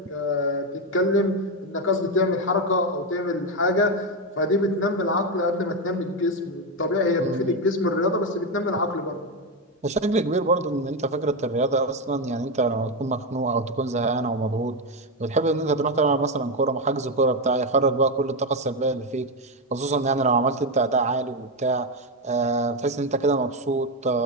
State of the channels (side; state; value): both; normal; correlation 0.08